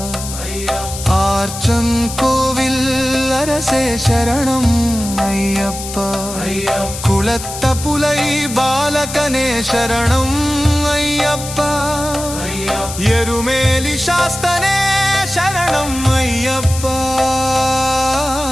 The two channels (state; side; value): noise; left; hiss, 9 dB below the sound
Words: ಆರ್ಚನ್ ಕೋವಿಲ್ ಅರಸೇ ಶರಣಂ ಅಯ್ಯಪ್ಪ ಕುಳತ್ತ ಪುಲೈ ಬಾಲಕನೇ ಶರಣಂ ಅಯ್ಯಪ್ಪ ಎರುಮೇಲಿ ಶಾಸ್ತನೇ ಶರಣಂ ಅಯ್ಯಪ್ಪ